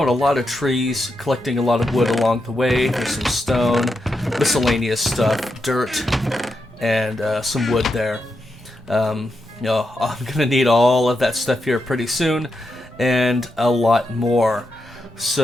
a lot of trees, collecting a lot of wood along the way. There's some stone, miscellaneous stuff, dirt, and some wood there. I'm gonna need all of that stuff here pretty soon, and a lot more.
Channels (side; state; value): both; normal; correlation 0.85